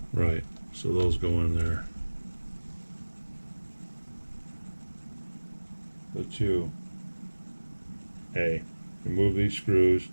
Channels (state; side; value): inverted; both; correlation -1.00